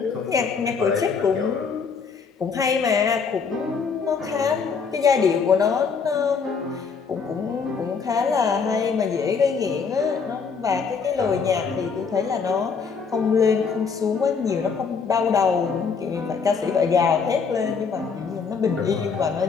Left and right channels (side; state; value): right; quieter; 5.6 dB